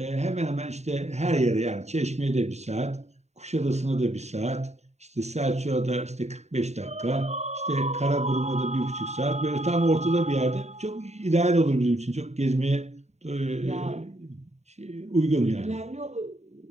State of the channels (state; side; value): late; left; 0.32 ms